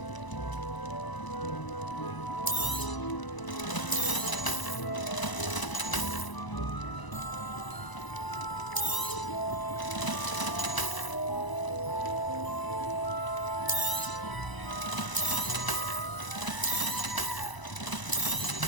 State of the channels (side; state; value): right; late; 1.0 ms